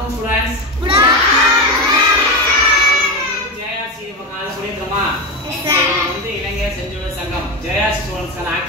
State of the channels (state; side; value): normal; both; correlation 0.16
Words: students. Good afternoon. JRC கால புரியுதுமா? Yes sir. வந்து இளைஞர் செஞ்சுள்ள சங்கம் JRC ஸ்டூடண்ட்ஸ் கான